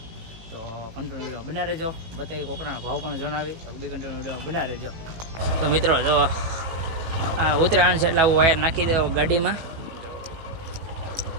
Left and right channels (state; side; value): late; left; 18 ms